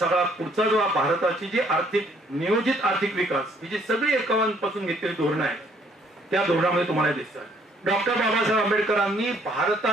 पुढचा जो भारताची जी नियोजित आर्थिक विकास ही जी सगळी एकावांपासून घेतलेली धोरणं आहेत त्या धोरणामध्ये तुम्हाला दिसतात. डॉक्टर बाबासाहेब आंबेडकरांनी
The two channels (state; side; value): normal; both; correlation 0.64